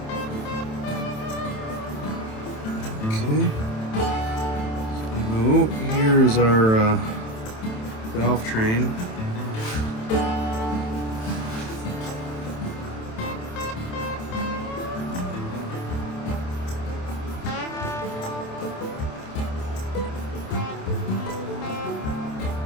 Okay. So here's our valve train.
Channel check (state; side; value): late; right; 27 ms